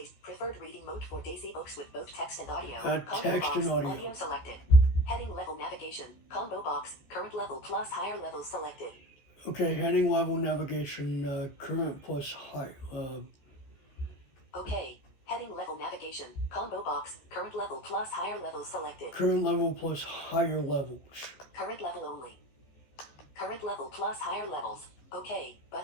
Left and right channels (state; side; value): late; right; 14 ms